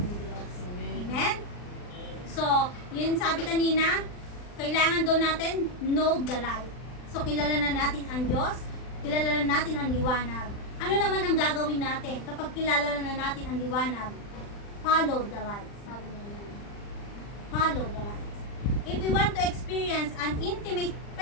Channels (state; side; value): late; right; 39 ms